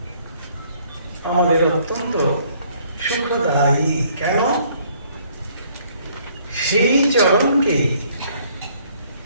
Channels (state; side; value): inverted; both; correlation -0.63